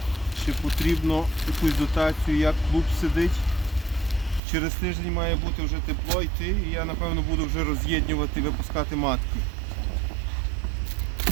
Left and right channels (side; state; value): left; drops out; at 4.4 s